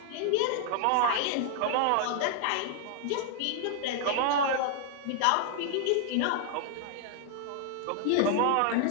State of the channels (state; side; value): different; both; correlation 0.00